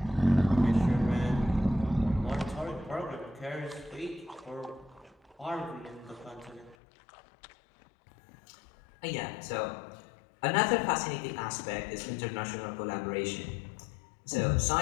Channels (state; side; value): drops out; right; at 6.8 s